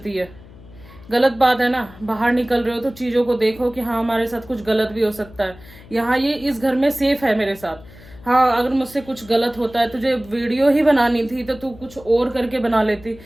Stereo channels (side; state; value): left; noise; hum, 21 dB below the sound